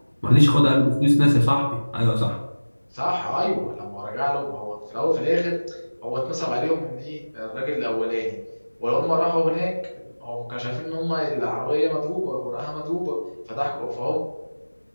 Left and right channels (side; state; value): both; inverted; correlation -1.00